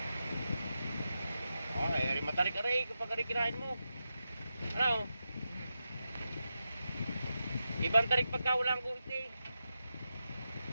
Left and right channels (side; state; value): both; inverted; correlation -0.89